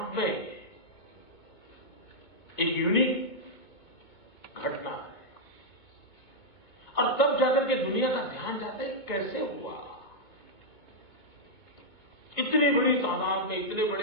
में एक यूनिक घटना है और तब जाकर के दुनिया का ध्यान जाता है कैसे हुआ, इतनी बड़ी तादाद में, इतने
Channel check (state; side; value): late; right; 2.2 ms